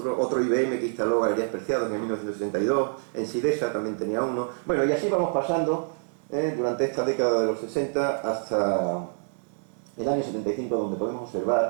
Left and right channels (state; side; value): silent; left; digital silence